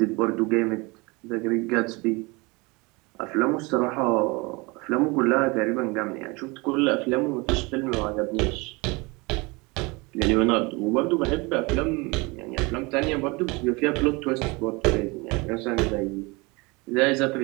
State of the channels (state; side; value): quieter; left; 26.1 dB